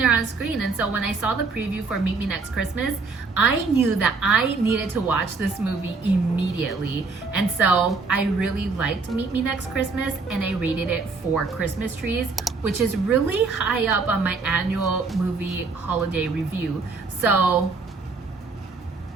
her on screen, and so when I saw the preview for Meet Me Next Christmas, I knew that I needed to watch this movie immediately. And so I really liked Meet Me Next Christmas, and I rated it 4 Christmas trees, which is really high up on my annual movie holiday review. So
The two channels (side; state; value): left; quieter; 4.3 dB